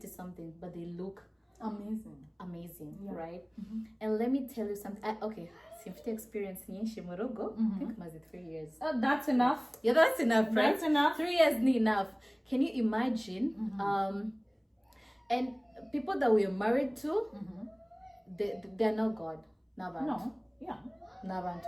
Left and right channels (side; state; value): both; identical; correlation 1.00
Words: something but they look amazing, right? And let me tell you something. Okay, simfite experience nyinshi mu rugo. I think maze 3 years. That's enough. Yeah, that's enough, right? That's enough. 3 years ni enough. Can you imagine? And people that we are married to, they're not God. Nabantu. No. Yeah.